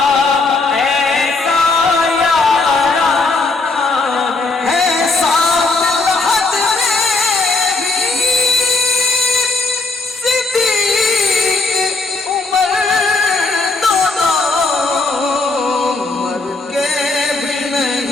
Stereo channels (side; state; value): right; quieter; 3.5 dB